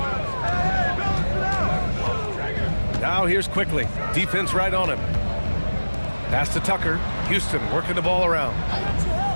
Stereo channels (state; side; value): inverted; both; correlation -1.00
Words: Now here's Quickly. Defense right on him. Pass to Tucker. Houston working the ball around.